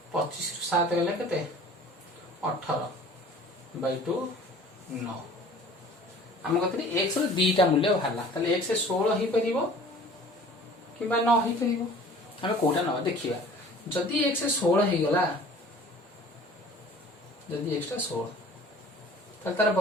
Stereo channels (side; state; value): both; normal; correlation 0.47